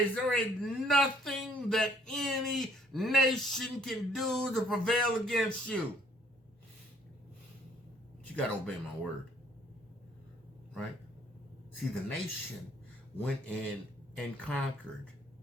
There ain't nothing that any nation can do to prevail against you. But you got to obey my word. Right? See, the nation went in and conquered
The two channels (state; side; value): normal; both; correlation 0.62